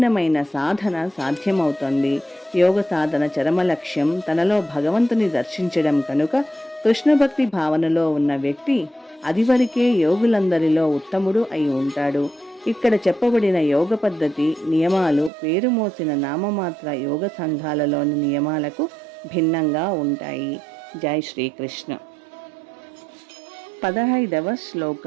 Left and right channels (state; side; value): drops out; left; at 15.3 s